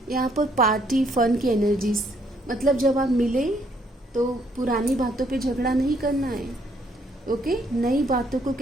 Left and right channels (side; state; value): both; normal; correlation 0.68